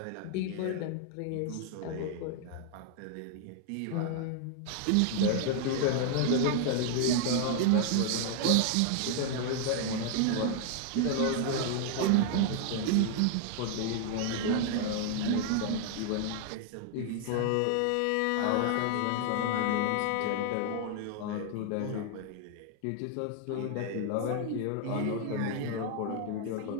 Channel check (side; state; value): both; different; correlation 0.00